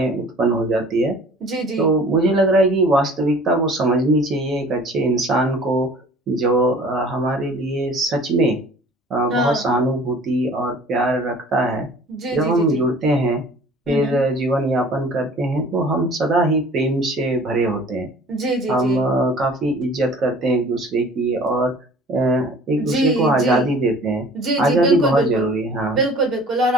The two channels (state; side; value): normal; both; correlation 0.48